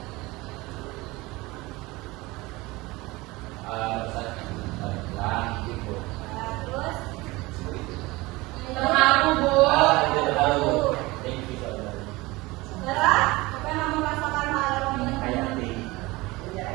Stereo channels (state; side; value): quieter; left; 21.6 dB